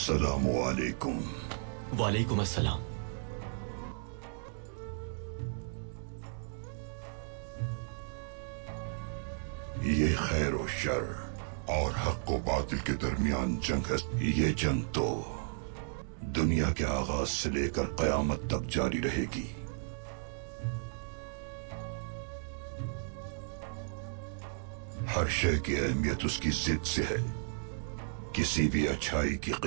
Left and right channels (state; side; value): silent; left; digital silence